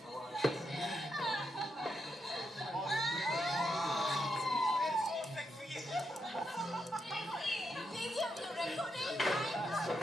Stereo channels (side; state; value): both; normal; correlation 0.82